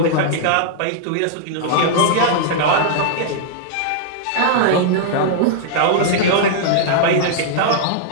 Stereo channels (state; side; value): different; both; correlation -0.01